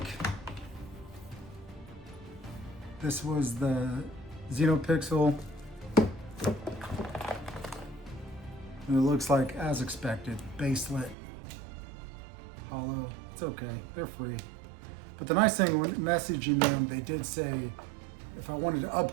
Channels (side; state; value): left; drops out; at 11.2 s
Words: this was the Xenopixel. And it looks like, as expected, baselit, hollow. It's okay, they're free. But the nice thing when messaging them, they did say if I wanted to